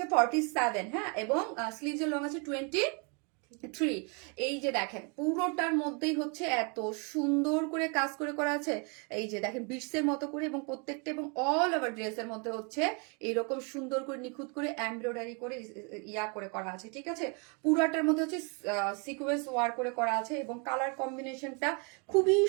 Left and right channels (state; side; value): quieter; left; 33.9 dB